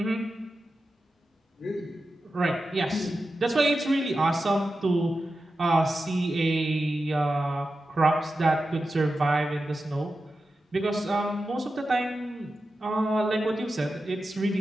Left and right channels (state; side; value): normal; both; correlation 0.92